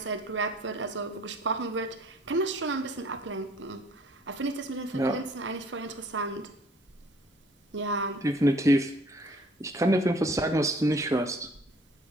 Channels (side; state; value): both; normal; correlation 0.56